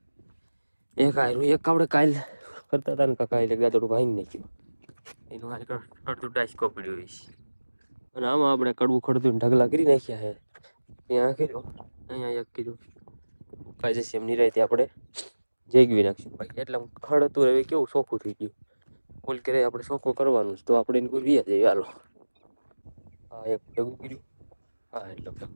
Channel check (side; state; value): both; inverted; correlation -1.00